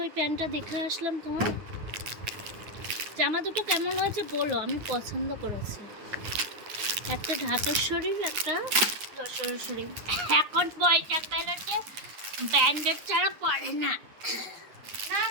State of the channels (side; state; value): left; late; 9.6 ms